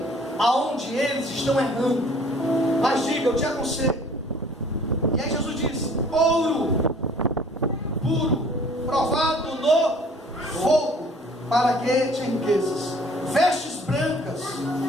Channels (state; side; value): normal; both; correlation 0.54